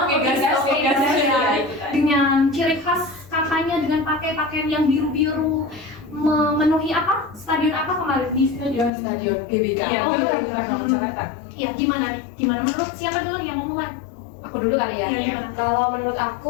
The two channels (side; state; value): right; drops out; at 8.9 s